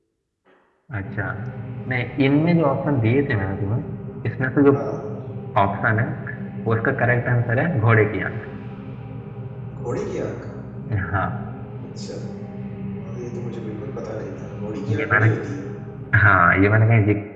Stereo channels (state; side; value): identical; both; correlation 1.00